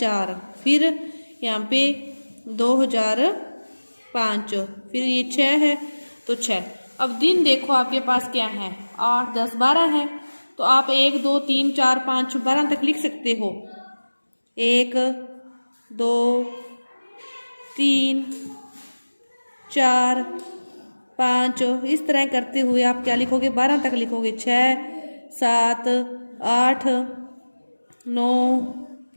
फिर यहाँ पे 2005, फिर ये 6 है तो 6। अब दिन देखो आपके पास क्या है, 8, 10, 12 है, तो आप 1, 2, 3, 4, 5, 12 तक लिख सकते हो। 1, 2, 3, 4, 5, इस तरह करते हुए आप क्या लिखोगे, 12 तक लिखोगे। 6, 7, 8, 9,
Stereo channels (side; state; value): both; inverted; correlation -1.00